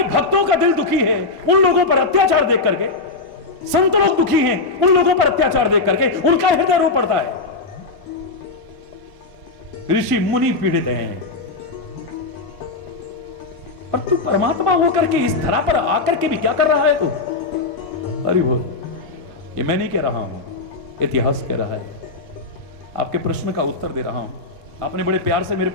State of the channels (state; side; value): quieter; right; 3.6 dB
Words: भक्तों का दिल दुखी है उन लोगों पर अत्याचार देख करके, संत लोग दुखी हैं उन लोगों पर अत्याचार देख करके, उनका हृदय रो पड़ता है। ऋषि मुनि पीड़ित हैं, पर तू परमात्मा होकर के इस धरा पर आकर के भी क्या कर रहा है तू? अरे बोल। ये मैं नहीं कह रहा हूं, इतिहास कह रहा है। आपके प्रश्न का उत्तर दे रहा हूं। आपने बड़े प्यार से मेरे